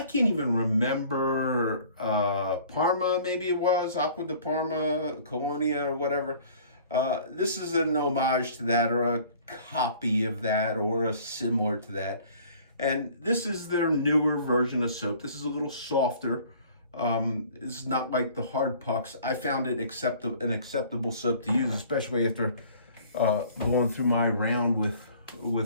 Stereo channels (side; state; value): both; inverted; correlation -0.51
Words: can't even remember. Parma, maybe it was Acqua di Parma, Colonia, or whatever. This is an homage to that, or a copy of that, or a similar to that. And this is their newer version of soap. This is a little softer. This is not like the hard pucks. I found it an acceptable soap to use, especially after going through my round with